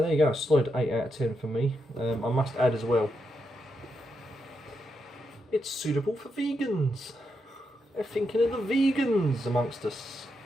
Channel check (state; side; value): normal; both; correlation 0.83